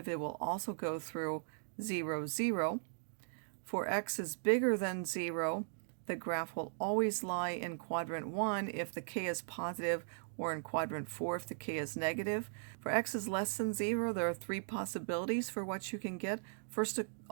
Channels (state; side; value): silent; left; digital silence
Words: it will also go through 0, 0. For x is bigger than 0, the graph will always lie in quadrant 1 if the k is positive, or in quadrant 4 if the k is negative. For x is less than 0, there are 3 possibilities for what you can get. First of